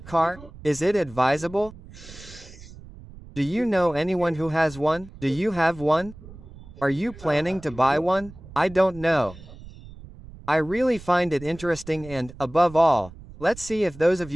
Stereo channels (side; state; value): right; noise; rumble, 18 dB below the sound